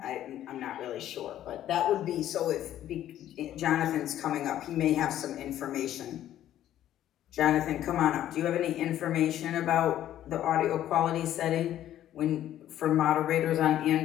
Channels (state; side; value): quieter; right; 12.1 dB